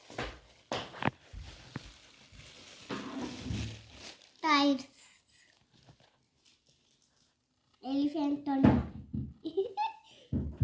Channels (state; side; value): identical; both; correlation 1.00